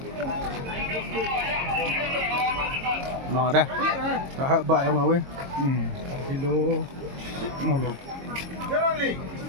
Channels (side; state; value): left; late; 22 ms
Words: Mò đây. Đó, bậy không đâu ấy. Kilo. Ngon luôn.